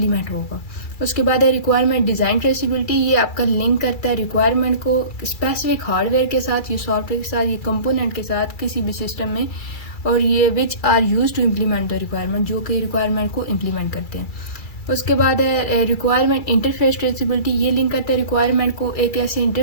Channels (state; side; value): late; right; 2.3 ms